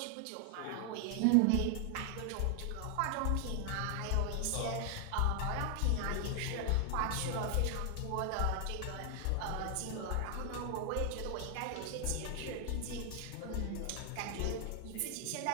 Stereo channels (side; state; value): both; different; correlation 0.00